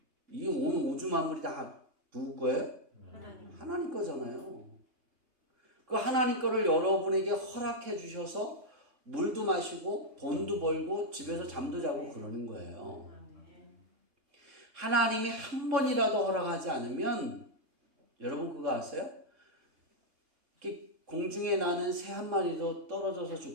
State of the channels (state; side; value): late; left; 3.6 ms